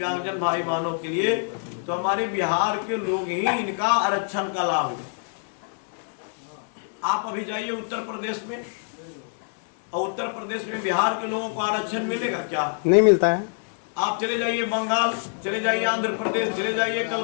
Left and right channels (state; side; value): silent; right; 62 dB below the other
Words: भाई बहनों के लिए, तो हमारे बिहार के लोग ही इनका आरक्षण का लाभ लें। आप अभी जाइए उत्तर प्रदेश में, और उत्तर प्रदेश में बिहार के लोगों को आरक्षण मिलेगा क्या? नहीं मिलता है। आप चले जाइए बंगाल, चले जाइए आंध्र प्रदेश, चले जाइए